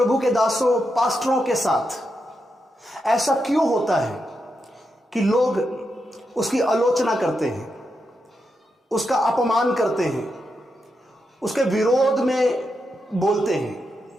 के दासों पास्टरों के साथ ऐसा क्यों होता है कि लोग उसकी आलोचना करते हैं, उसका अपमान करते हैं, उसके विरोध में बोलते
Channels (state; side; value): normal; both; correlation 0.85